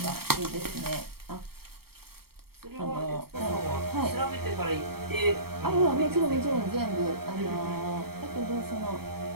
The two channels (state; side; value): late; left; 0.95 ms